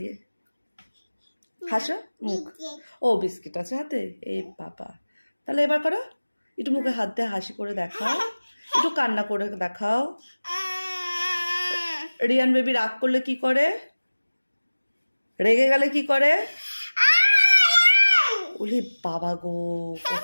হাসো মুখ ও বিস্কিট আছে হাতে এই বাবা তাহলে এবার করো একটু মুখে হাত দিয়ে হাসি করে দেখাও একটু কান্না করে দেখাও রিয়ান বেবি রাগ করলে কি করে রেগে গেলে কি করে ওরে বাবা গো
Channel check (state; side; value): inverted; both; correlation -1.00